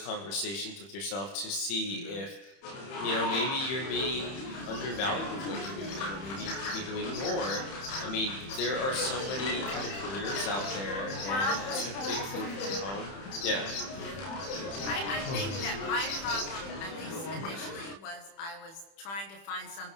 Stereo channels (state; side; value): late; right; 31 ms